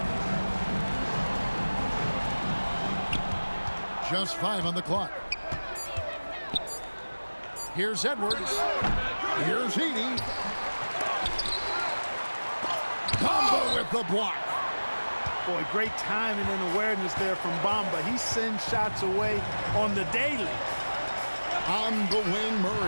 Just 5 on the clock. Here's Edwards. Here's Edey. Bamba with the block. Boy, great timing and awareness there from Bamba. He sends shots away on the daily. On the wing,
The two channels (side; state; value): both; inverted; correlation -1.00